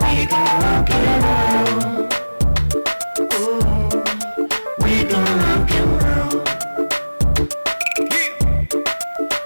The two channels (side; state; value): both; inverted; correlation -1.00